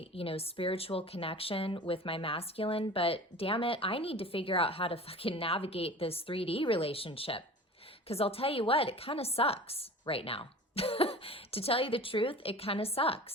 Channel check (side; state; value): both; normal; correlation 0.39